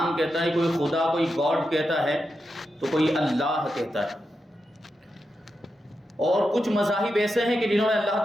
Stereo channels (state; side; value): normal; both; correlation 0.88